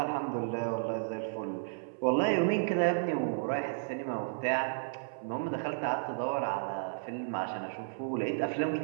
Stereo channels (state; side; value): silent; left; 56 dB below the other